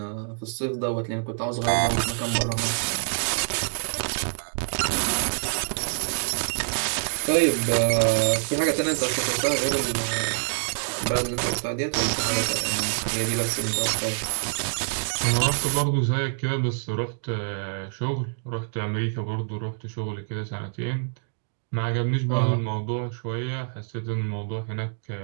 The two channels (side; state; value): left; silent; digital silence